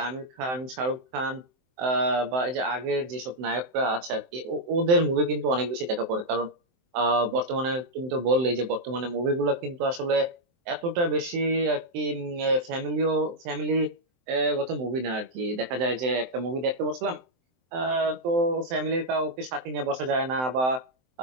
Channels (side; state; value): left; late; 23 ms